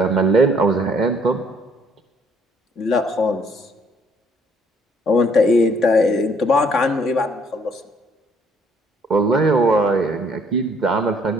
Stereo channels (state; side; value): normal; both; correlation 0.64